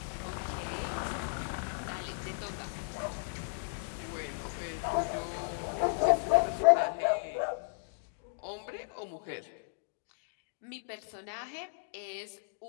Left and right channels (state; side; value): silent; right; digital silence